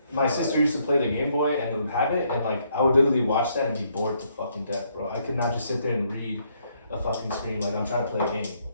My sister used to play the Game Boy and would have it, and like I would literally watch that and be bored to fucking death, bro. I could not just sit there and read a fucking screen like I'm trying to play a game.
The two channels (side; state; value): both; inverted; correlation -0.72